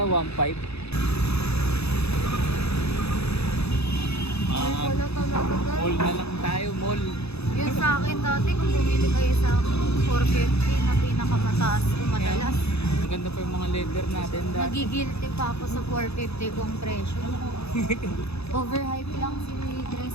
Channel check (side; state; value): right; late; 0.79 ms